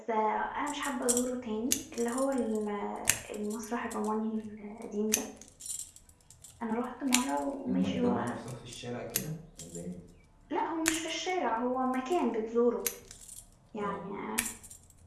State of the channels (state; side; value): identical; both; correlation 1.00